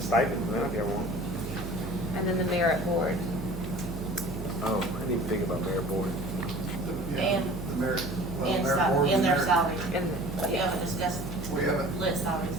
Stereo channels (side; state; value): right; noise; hum, 9 dB below the sound